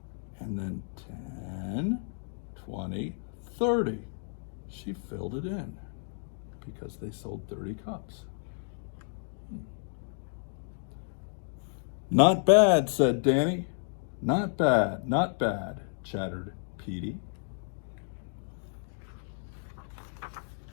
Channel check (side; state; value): right; silent; digital silence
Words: and then 10, 20, 30. She filled it in because they sold 30 cups. Not bad, said Danny. Not bad, not bad, chattered Petey.